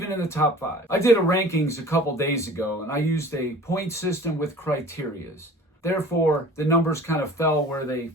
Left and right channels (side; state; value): both; normal; correlation 0.45